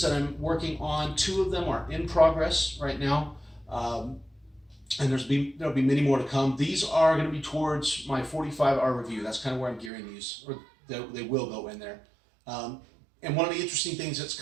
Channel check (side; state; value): left; drops out; at 9.9 s